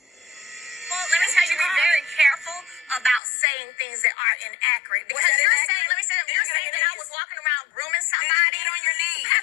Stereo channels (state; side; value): drops out; right; at 3.2 s